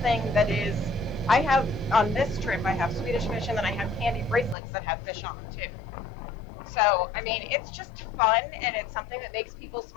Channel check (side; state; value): right; drops out; at 4.5 s